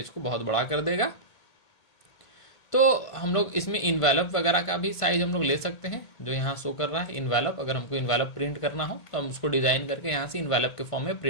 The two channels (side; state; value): right; late; 1.5 ms